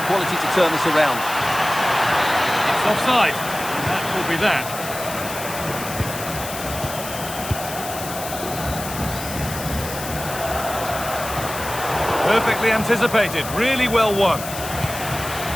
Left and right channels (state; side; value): noise; left; hiss, 9 dB below the sound